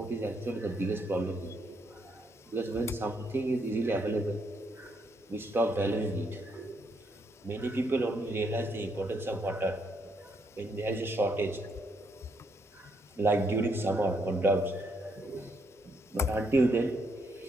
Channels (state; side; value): normal; both; correlation 0.75